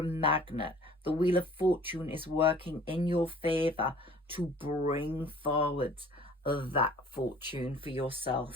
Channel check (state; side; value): normal; both; correlation 0.50